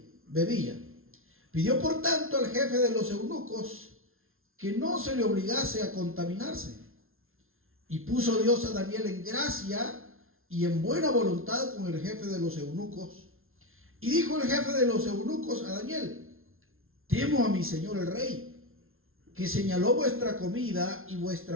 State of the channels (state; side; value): late; left; 0.61 ms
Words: bebía. Pidió por tanto al jefe de los eunucos que no se le obligase a contaminarse. Y puso Dios a Daniel en gracia y en buena voluntad con el jefe de los eunucos. Y dijo el jefe de los eunucos a Daniel: temo a mi señor el rey, que señaló vuestra comida y